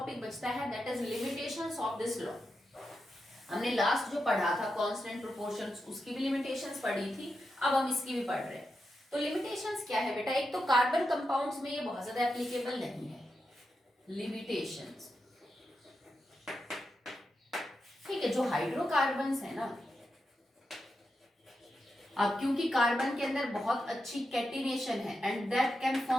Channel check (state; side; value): normal; both; correlation 0.87